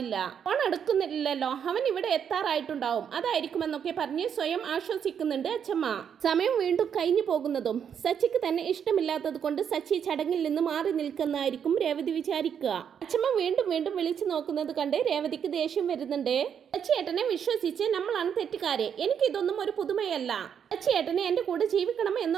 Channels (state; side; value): quieter; left; 8.0 dB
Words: ഫോൺ എടുക്കുന്നില്ലല്ലോ, അവൻ ഇവിടെ എത്താറായിട്ടുണ്ടാവും, അതായിരിക്കുമെന്നൊക്കെ പറഞ്ഞ് സ്വയം ആശ്വസിക്കുന്നുണ്ട് അച്ഛമ്മ. സമയം വീണ്ടും കഴിഞ്ഞു പോകുന്നതും സച്ചിക്ക് തന്നെ ഇഷ്ടമില്ലാത്തത് കൊണ്ട് സച്ചി ചടങ്ങിൽ നിന്ന് മാറി നിൽക്കുന്നതായിരിക്കും രേവതി വിചാരിക്കുക. അച്ഛമ്മ വീണ്ടും വീണ്ടും വിളിച്ചു നോക്കുന്നത് കണ്ട് രേവതിക്ക് ദേഷ്യം വരുന്നുണ്ട്. സച്ചിയേട്ടനെ വിശ്വസിച്ച് നമ്മളാണ് തെറ്റുകാരെ, എനിക്ക് ഇതൊന്നും ഒരു പുതുമയല്ല. സച്ചിയേട്ടനെ എന്റെ കൂടെ ജീവിക്കണം